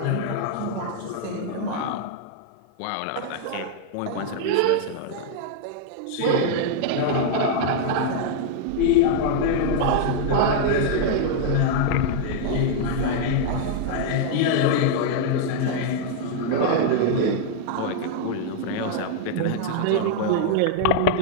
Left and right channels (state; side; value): different; both; correlation -0.01